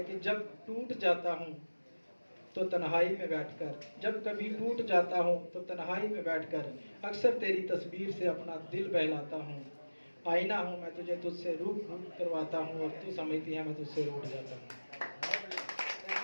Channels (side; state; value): both; inverted; correlation -1.00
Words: कि जब टूट जाता हूँ तो तन्हाई में बैठकर, जब कभी टूट जाता हूँ तो तन्हाई में बैठकर अक्सर तेरी तस्वीर से अपना दिल बहलाता हूँ। आईना हूँ मैं तुझे तुझसे रूप करवाता हूँ, और तू समझती है मैं तुझसे रूठ जाता हूँ।